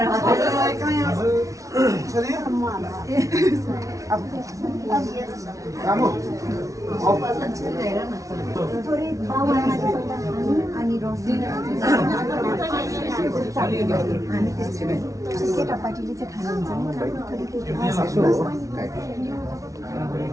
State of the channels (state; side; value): late; left; 0.16 ms